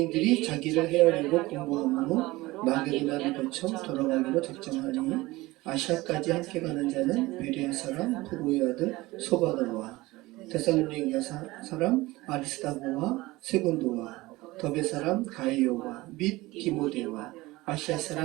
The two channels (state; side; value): quieter; left; 20.0 dB